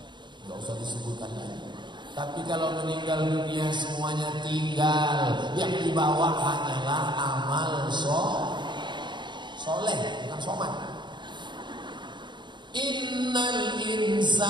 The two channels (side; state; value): left; late; 0.22 ms